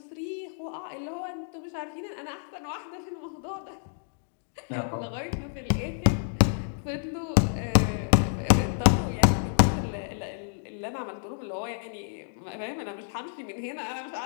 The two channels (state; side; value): silent; right; digital silence